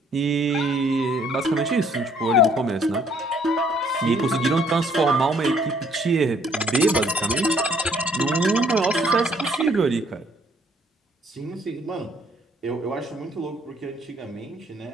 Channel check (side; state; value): both; normal; correlation 0.63